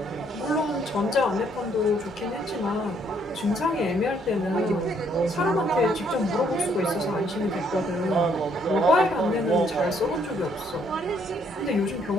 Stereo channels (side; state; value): both; normal; correlation 0.69